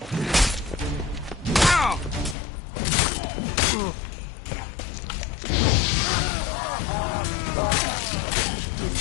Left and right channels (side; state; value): right; drops out; at 2.4 s